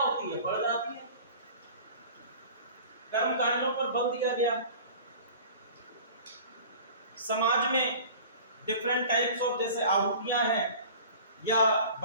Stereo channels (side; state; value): both; inverted; correlation -0.43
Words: है? बढ़ जाती है। कर्म कांडों पर बल दिया गया। समाज में डिफरेंट टाइप्स ऑफ जैसे आहुतियां हैं या